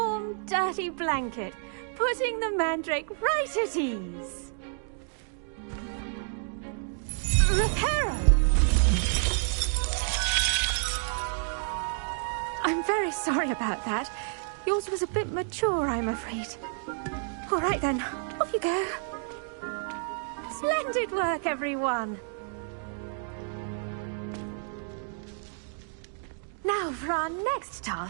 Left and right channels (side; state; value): left; silent; 58 dB below the other